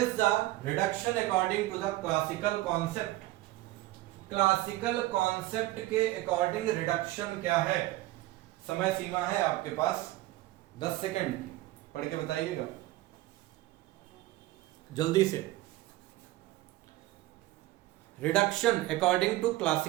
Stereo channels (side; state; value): left; quieter; 17.4 dB